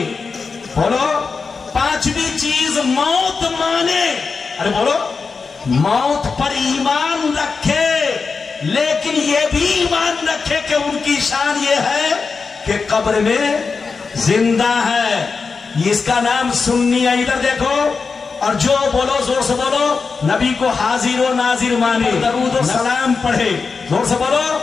بولو، پانچویں چیز موت مانے۔ ارے بولو، موت پر ایمان رکھے، لیکن یہ بھی ایمان رکھے کہ ان کی شان یہ ہے کہ قبر میں زندہ ہے۔ اس کا نام سنی ہے۔ ادھر دیکھو، اور جو بولو زور سے بولو، نبی کو حاضر و ناظر مانے، درود و سلام پڑھے، زور سے بولو،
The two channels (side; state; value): right; quieter; 4.8 dB